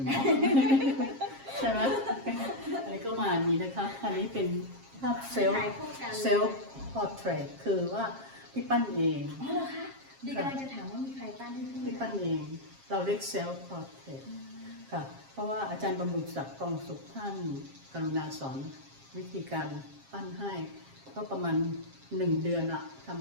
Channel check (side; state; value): left; late; 7.4 ms